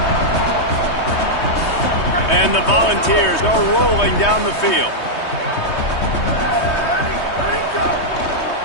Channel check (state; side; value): late; right; 3.2 ms